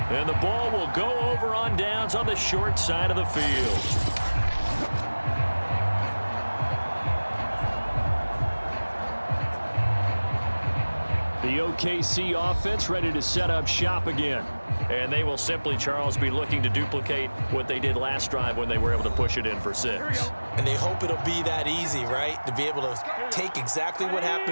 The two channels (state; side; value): inverted; both; correlation -1.00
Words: the ball will go over on downs on the short side of the field. The OKC offense ready to set up shop again. And they will simply, Charles, be looking to duplicate what they did last drive when they were able to push it in for 6. And they hope it'll be that easy, right? To be able to take exactly what